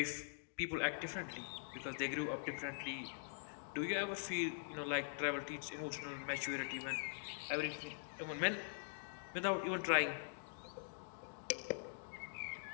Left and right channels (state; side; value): silent; right; digital silence